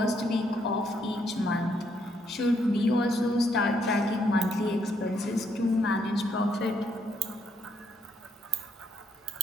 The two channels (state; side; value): normal; both; correlation 0.73